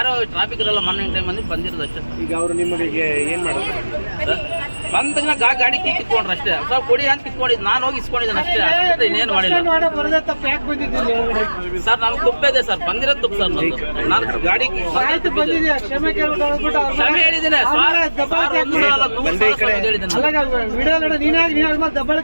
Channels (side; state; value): both; inverted; correlation -1.00